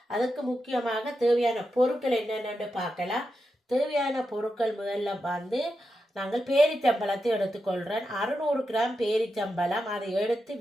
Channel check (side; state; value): both; normal; correlation 0.88